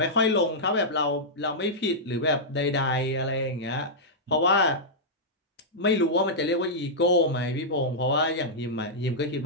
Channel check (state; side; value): normal; both; correlation -0.10